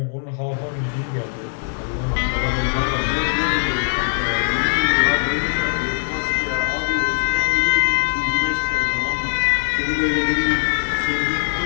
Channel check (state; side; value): silent; right; digital silence